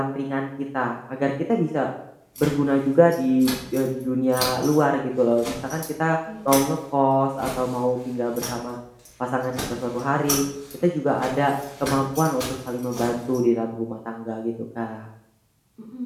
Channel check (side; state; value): both; identical; correlation 1.00